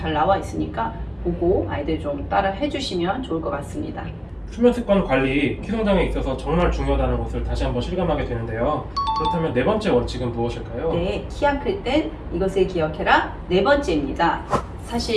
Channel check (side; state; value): both; identical; correlation 1.00